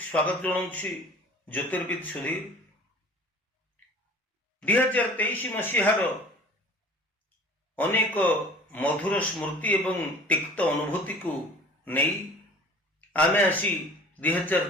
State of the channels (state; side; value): normal; both; correlation 0.45